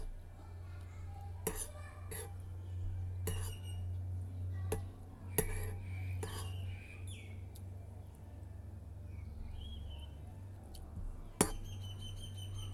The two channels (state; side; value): identical; both; correlation 1.00